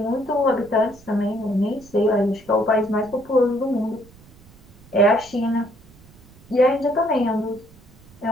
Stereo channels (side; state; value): right; noise; rumble, 25 dB below the sound